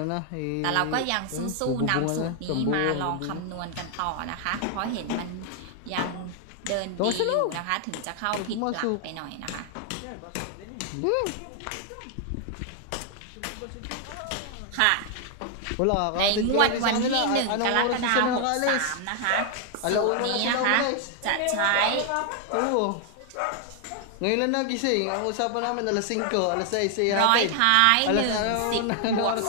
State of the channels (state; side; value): different; both; correlation 0.00